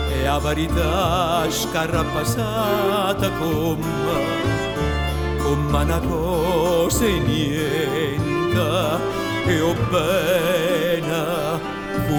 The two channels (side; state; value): both; identical; correlation 1.00